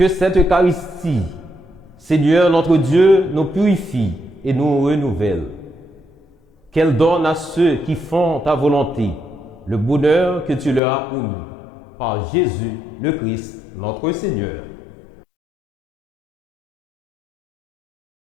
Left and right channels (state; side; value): drops out; right; at 10.8 s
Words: cette Eucharistie, Seigneur notre Dieu, nous purifie et nous renouvelle. Qu'elle donne à ceux qui font ta volonté le bonheur que tu leur as promis par Jésus le Christ, notre Seigneur.